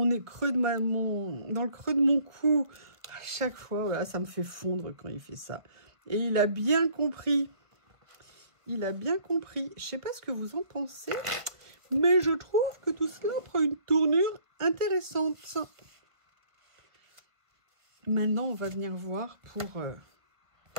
creux de dans le creux de mon cou. À chaque fois, voilà, ça me fait fondre quand il fait ça. Et il a bien compris. Il a bien compris. Je sais pas ce que vous en pensez, mais je trouve que tout cela prend une tournure intéressante. Maintenant, on va venir voir pour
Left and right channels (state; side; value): late; left; 1.3 ms